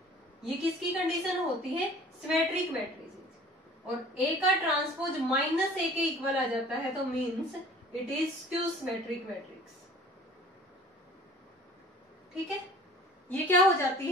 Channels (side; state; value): both; normal; correlation 0.47